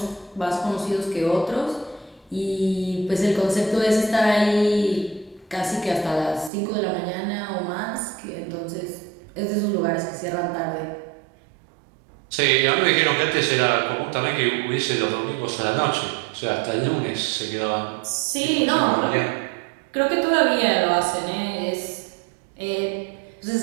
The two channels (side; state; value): left; drops out; at 6.5 s